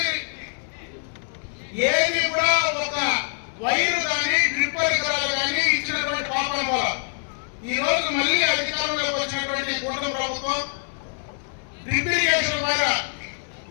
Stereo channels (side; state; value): right; silent; 62 dB below the other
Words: ఏది కూడా ఒక వైరు కానీ డ్రిప్ పరికరాలు కానీ ఇచ్చినటువంటి పాపన వల్ల ఈ రోజు మళ్ళీ అధికారంలోకి వచ్చినటువంటి కూటమి ప్రభుత్వం డ్రిప్ ఇరిగేషన్ పైన